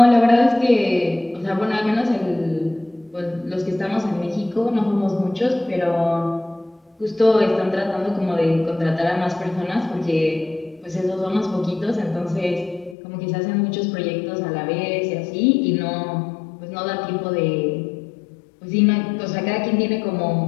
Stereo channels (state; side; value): drops out; right; at 13.0 s